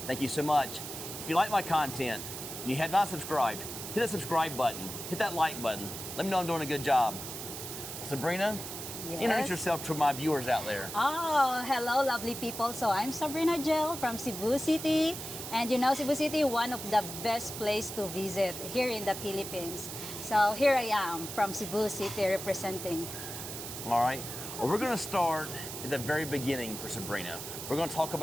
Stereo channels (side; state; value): right; noise; hiss, 8 dB below the sound